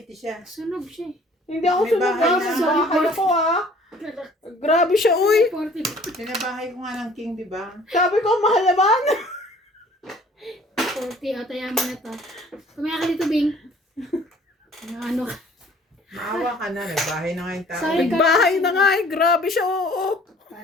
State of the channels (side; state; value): both; normal; correlation 0.54